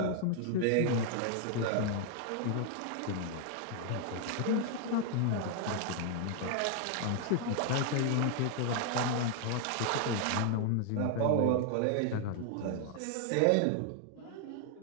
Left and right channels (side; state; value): both; different; correlation 0.00